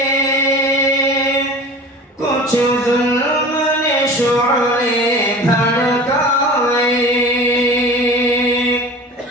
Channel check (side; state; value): both; normal; correlation 0.38